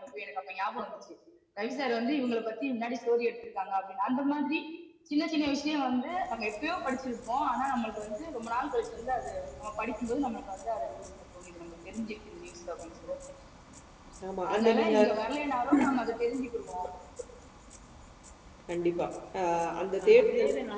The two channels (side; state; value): both; identical; correlation 1.00